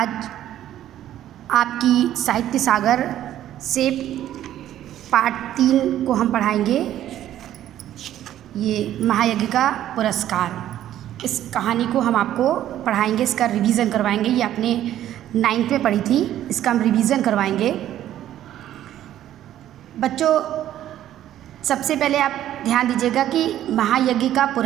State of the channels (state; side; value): quieter; left; 12.2 dB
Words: आपकी साहित्य सागर से पार्ट 3 को हम पढ़ाएंगे। ये महायज्ञ का पुरस्कार, इस कहानी को हम आपको पढ़ाएंगे, इसका रिवीजन करवाएंगे। ये आपने 9th में पढ़ी थी, इसका हम रिवीजन करवाएंगे। बच्चों, सबसे पहले आप ध्यान दीजिएगा कि महायज्ञ का